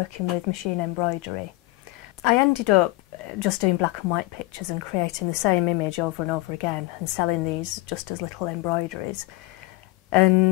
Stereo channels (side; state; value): right; quieter; 20.5 dB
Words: with machine embroidery. I ended up just doing black and white pictures and creating the same image over and over again and selling these just as little embroideries.